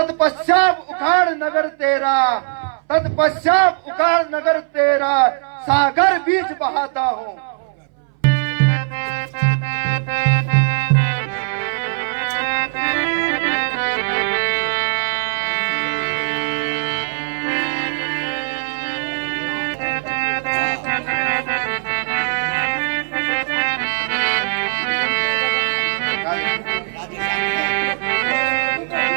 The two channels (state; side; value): silent; left; 62 dB below the other